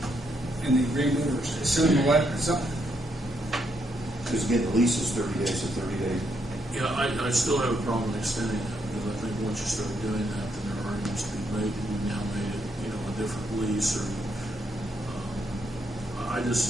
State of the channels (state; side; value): normal; both; correlation 0.76